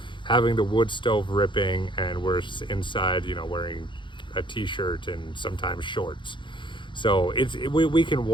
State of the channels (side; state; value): right; late; 0.23 ms